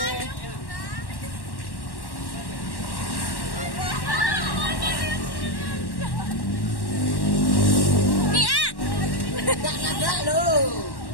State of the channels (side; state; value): right; late; 1.1 ms